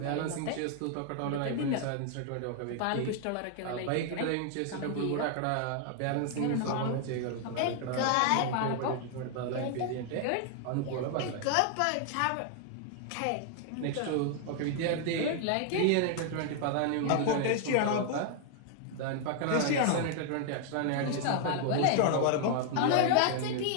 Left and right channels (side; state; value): both; different; correlation 0.00